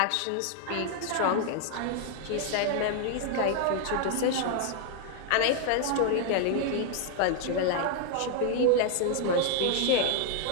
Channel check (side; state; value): both; different; correlation 0.00